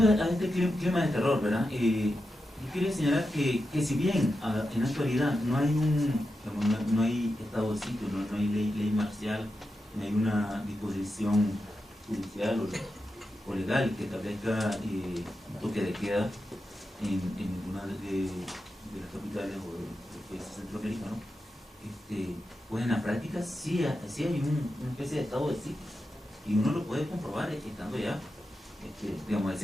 a este clima de terror, ¿verdad? Yo quería señalar que si bien en la actualidad no hay estado de sitio, no hay ley marcial, no hay una disposición judicial o legal que establezca un toque de queda en ninguna de las capitales o de los países centroamericanos, pues en la práctica sí hay una especie de estado de sitio, y uno lo puede comprobar estando ya, digamos, a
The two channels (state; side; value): normal; both; correlation 0.89